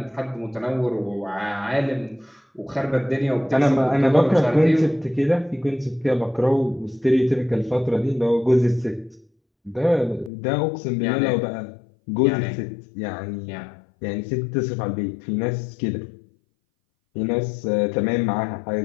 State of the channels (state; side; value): drops out; right; at 10.3 s